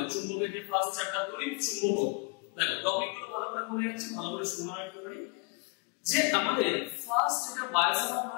চুম্বকের যে ফার্স্ট চ্যাপ্টার তড়িৎ চুম্বকত্ব। দেখো টপিকগুলো ভালো করে মনে যাচ্ছে, ভালো করে শোনা রাখতে পারি যে আমাদের ফার্স্ট এটা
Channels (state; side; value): quieter; right; 32.7 dB